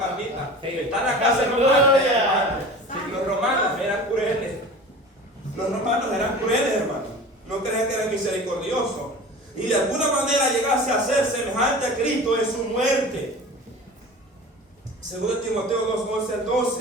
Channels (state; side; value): normal; both; correlation 0.37